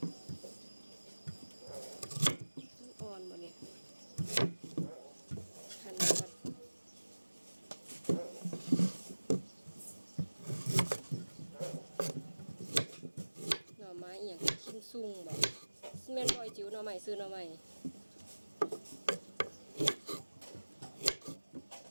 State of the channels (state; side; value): inverted; both; correlation -1.00